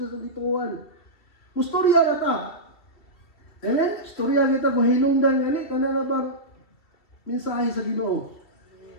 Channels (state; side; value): late; right; 2.8 ms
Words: gituan. Mustorya ra ta. Amen? Istorya kita kung hinungdan ani kana na bang mensahe sa Ginoo.